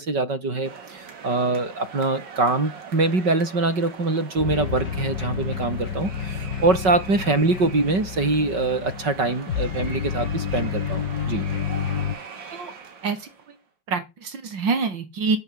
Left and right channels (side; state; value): left; late; 5.3 ms